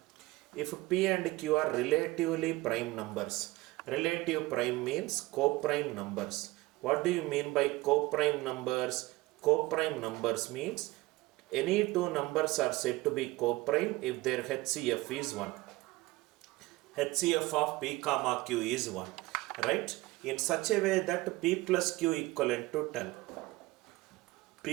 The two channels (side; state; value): left; quieter; 20.2 dB